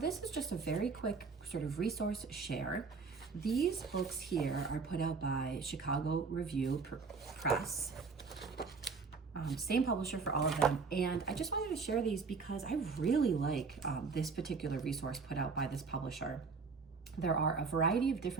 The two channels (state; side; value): quieter; left; 4.8 dB